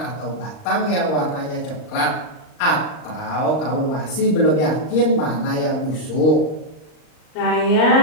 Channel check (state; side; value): late; right; 39 ms